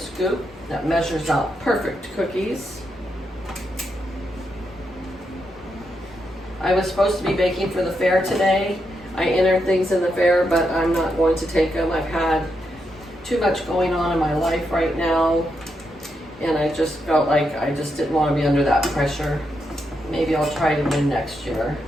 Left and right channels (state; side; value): normal; both; correlation 0.83